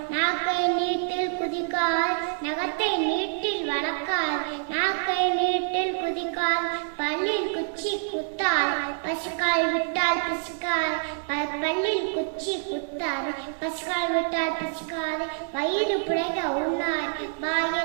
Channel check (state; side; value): silent; left; digital silence